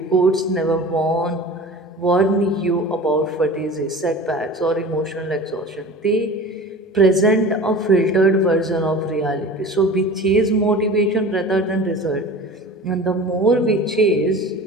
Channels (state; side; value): normal; both; correlation 0.38